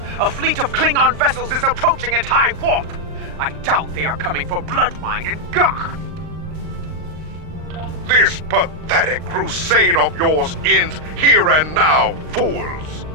A fleet of Klingon vessels is approaching at high warp. I doubt they are coming for Bloodwine and Gach. This pathetic crusade of yours ends here and now, fools.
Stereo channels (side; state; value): left; late; 39 ms